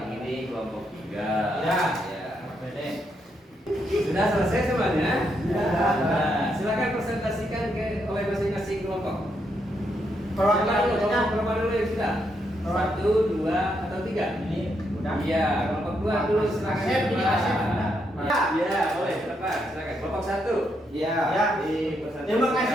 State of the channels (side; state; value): both; normal; correlation 0.78